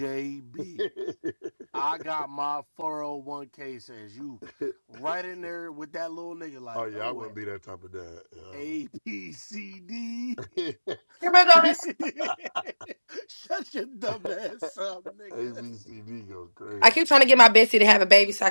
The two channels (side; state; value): both; inverted; correlation -1.00